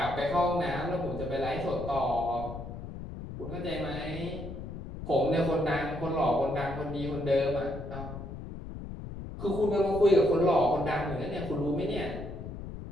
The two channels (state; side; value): noise; left; rumble, 9 dB below the sound